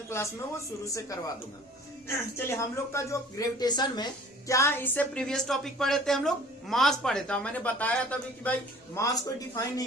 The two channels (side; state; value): both; normal; correlation 0.49